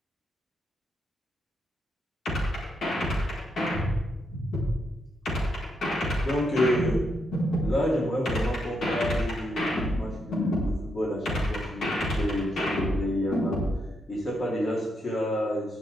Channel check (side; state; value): both; normal; correlation 0.79